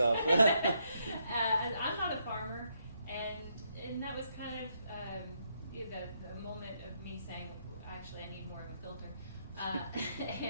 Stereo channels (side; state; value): both; inverted; correlation -0.77